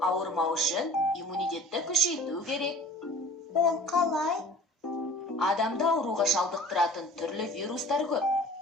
ауырмау үшін иммунитетті күшейту керек. Ол қалай? Адамда ауруға шалдықтыратын түрлі вирустар көп.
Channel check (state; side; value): normal; both; correlation 0.46